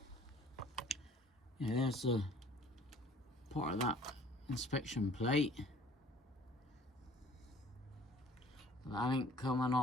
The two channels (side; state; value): both; normal; correlation 0.52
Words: Yeah, there's a part of that inspection plate. That ain't coming